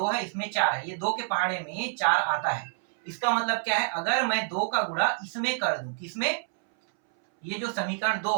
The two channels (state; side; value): silent; left; 60 dB below the other